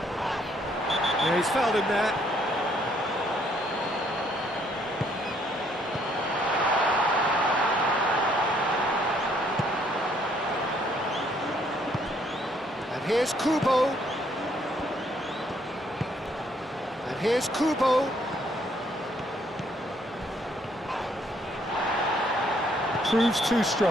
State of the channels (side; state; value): both; normal; correlation 0.67